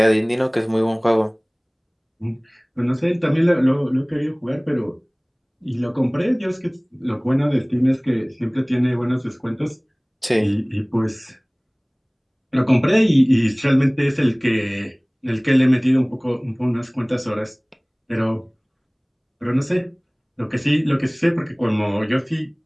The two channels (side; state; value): both; identical; correlation 1.00